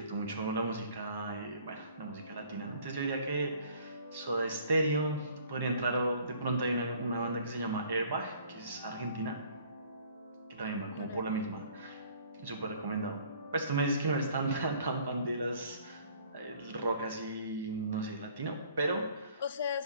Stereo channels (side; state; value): both; inverted; correlation -0.55